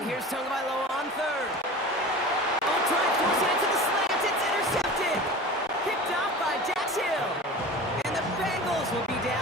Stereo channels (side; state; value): both; normal; correlation 0.35